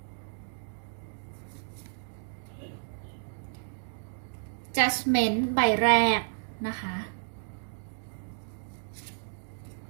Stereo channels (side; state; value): left; silent; digital silence